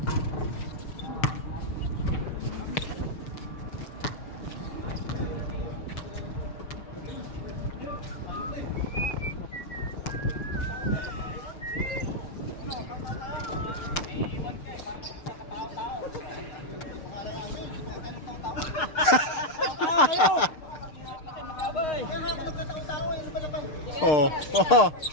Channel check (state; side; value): late; right; 6.7 ms